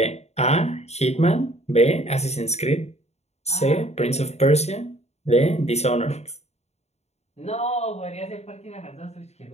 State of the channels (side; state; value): right; late; 0.31 ms